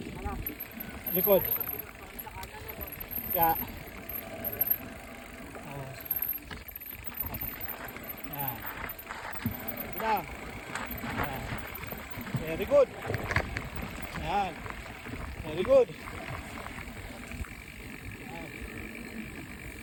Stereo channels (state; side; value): identical; both; correlation 1.00